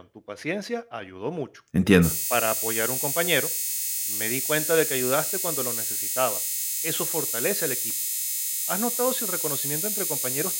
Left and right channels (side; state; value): both; identical; correlation 1.00